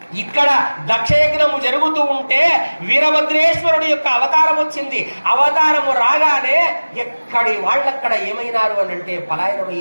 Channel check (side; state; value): both; inverted; correlation -1.00